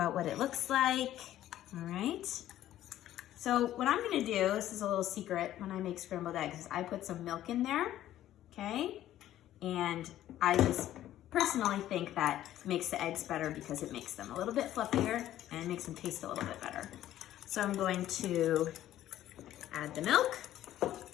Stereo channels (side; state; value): right; quieter; 13.0 dB